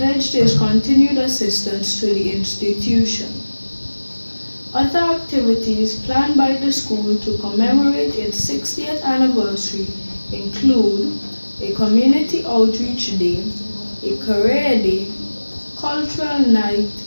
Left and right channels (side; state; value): both; inverted; correlation -1.00